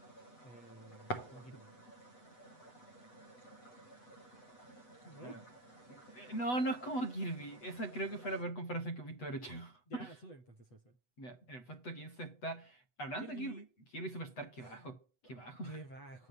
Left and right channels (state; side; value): late; right; 8.1 ms